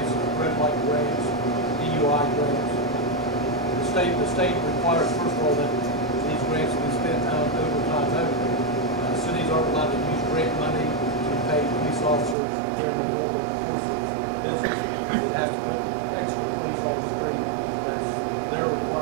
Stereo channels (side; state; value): left; drops out; at 12.4 s